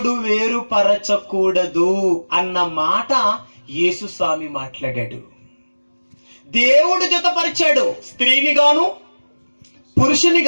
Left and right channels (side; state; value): both; inverted; correlation -1.00